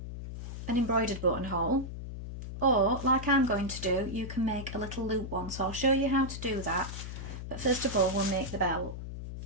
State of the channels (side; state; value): left; noise; hum, 8 dB below the sound